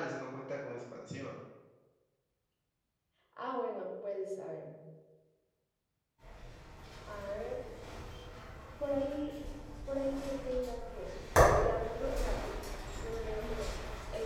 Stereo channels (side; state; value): both; identical; correlation 1.00